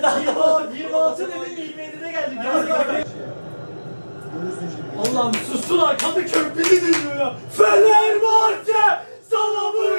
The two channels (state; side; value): inverted; both; correlation -1.00